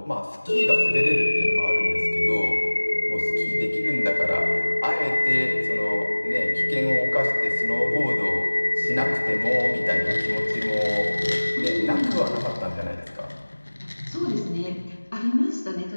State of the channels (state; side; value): inverted; both; correlation -1.00